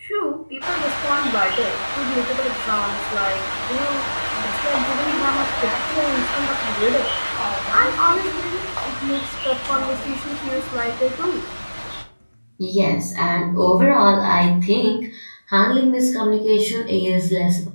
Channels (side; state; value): both; inverted; correlation -1.00